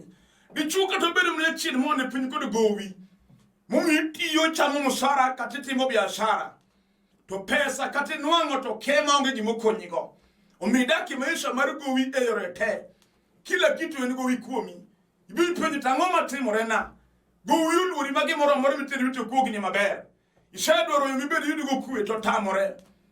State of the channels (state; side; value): identical; both; correlation 1.00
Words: Dichuo kata bedo mne chien mo ane piny kod gowi. Momi tiyo chamo musara kata timo biashara. To pesa kata nwang'o to kema onge gimo konyigo. Omidaki maisha mar gowi e yore te. Kila kitu en gowi kuomi. Ibi penjo tang'o matimore na. Gowi uluori magi moro miteri wito kogni maber. Isedwaro yo mibedi yudo go kwe to tamore.